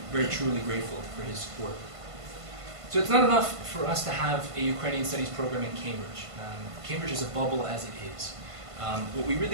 very truly grateful for his support. So it's not enough for us to have a Ukrainian studies program in Cambridge. Cambridge is a bubble as it is. What we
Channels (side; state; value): left; late; 1.5 ms